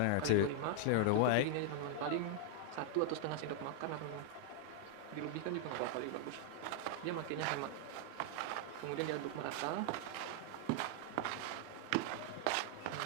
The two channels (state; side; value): different; both; correlation 0.00